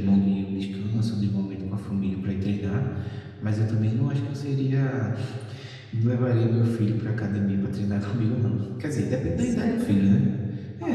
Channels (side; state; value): both; identical; correlation 1.00